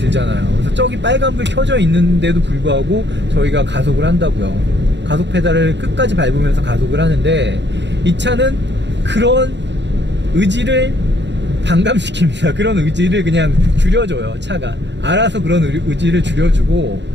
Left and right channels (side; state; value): left; late; 0.52 ms